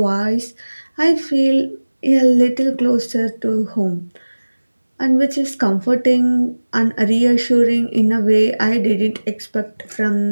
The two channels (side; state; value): both; inverted; correlation -1.00